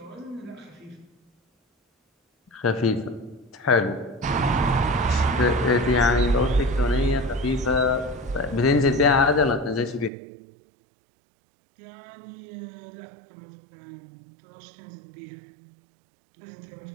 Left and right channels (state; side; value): drops out; left; at 10.1 s